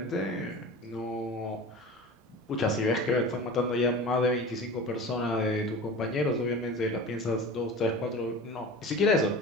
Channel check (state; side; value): normal; both; correlation 0.36